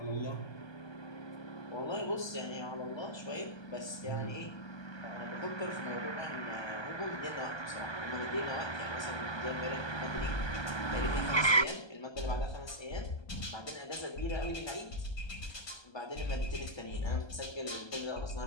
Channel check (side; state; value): right; late; 1.2 ms